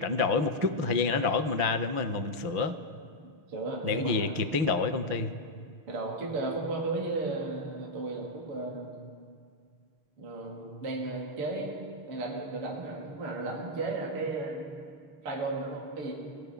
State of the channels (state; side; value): late; left; 6.6 ms